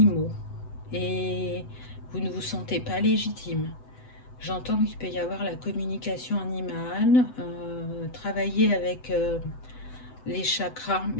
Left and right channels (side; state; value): right; late; 7.9 ms